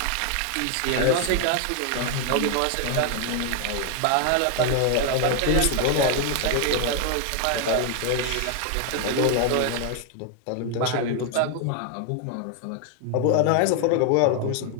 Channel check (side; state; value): both; different; correlation 0.00